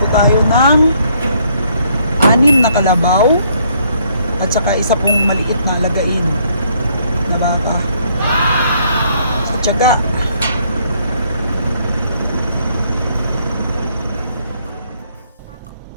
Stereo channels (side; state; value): both; inverted; correlation -0.67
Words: tayo ng 6 na kalabaw at saka isa pong maliit na alagain na baka. Tiyaga.